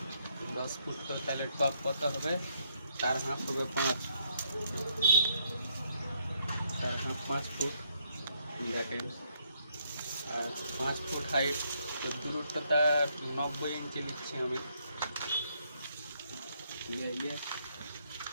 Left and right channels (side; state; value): both; inverted; correlation -0.73